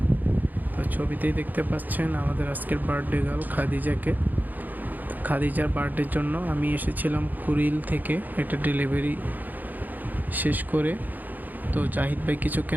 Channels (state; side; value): late; left; 0.084 ms